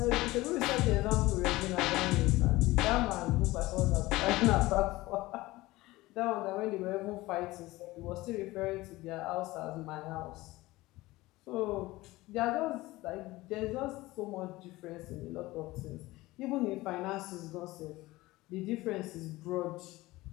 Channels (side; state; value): right; quieter; 19.2 dB